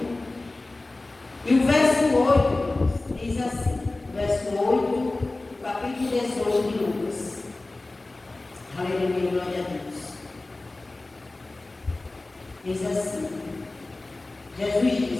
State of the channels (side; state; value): right; quieter; 3.0 dB